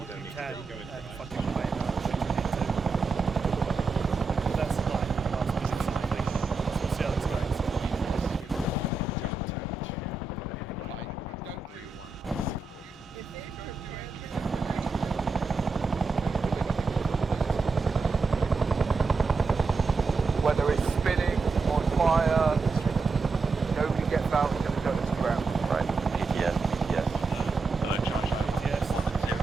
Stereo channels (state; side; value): quieter; left; 4.1 dB